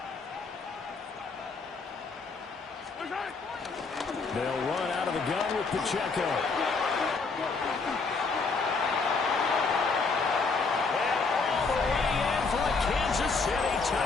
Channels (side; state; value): right; quieter; 4.4 dB